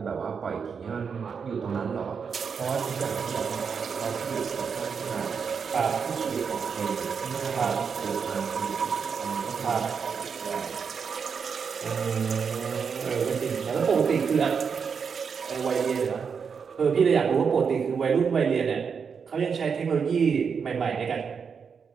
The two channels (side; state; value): left; quieter; 6.2 dB